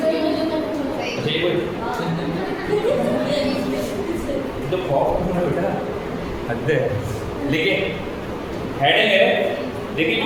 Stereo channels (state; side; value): identical; both; correlation 1.00